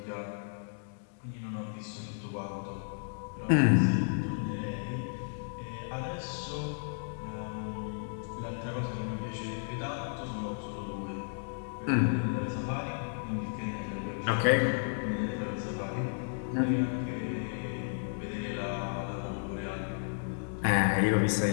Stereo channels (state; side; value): silent; right; digital silence